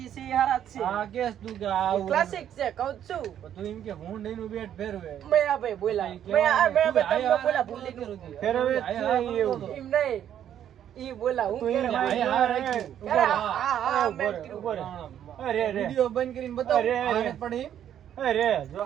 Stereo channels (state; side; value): quieter; left; 10.2 dB